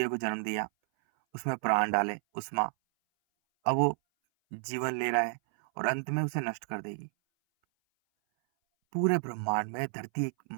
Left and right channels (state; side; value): silent; left; 57 dB below the other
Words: को जन्म दिया, उसमें प्राण डाले, उष्मा, अब वो जीवन ले रहा है और अंत में उसे नष्ट कर देगी। पूरे ब्रह्मांड में धरती एक